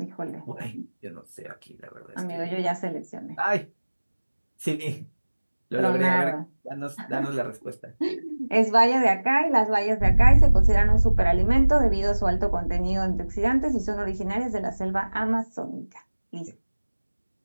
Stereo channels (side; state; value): both; inverted; correlation -1.00